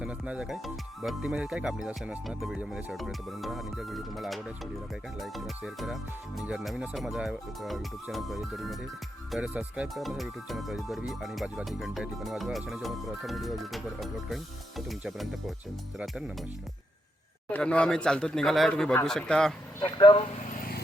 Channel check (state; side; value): normal; both; correlation 0.81